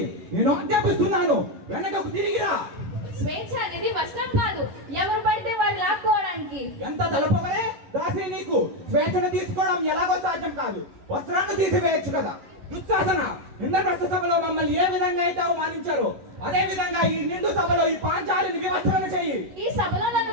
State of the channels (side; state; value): left; late; 11 ms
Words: నేను ఆజ్ఞాపిస్తున్నాను, వెనకకు తిరిగిరా. స్వేచ్ఛ అనేది వస్త్రం కాదు, ఎవరు పడితే వారు లాక్కోవడానికి. ఎంత తలపవరే దాసి, నీకు స్వేచ్ఛను తీసుకోవడం ఎలాగో సాధ్యం కాదు. వస్త్రాన్ని తీసివేయచ్చు కదా. దుశ్శాసన, ఇంద్రప్రస్థ సభలో మమ్మల్ని ఏ విధంగా అయితే అవమానించారో అదే విధంగా ఈ నిండు సభలో ఈ పాంచాలిని వివస్త్రణ చెయ్యి. ఈ సభలో నన్ను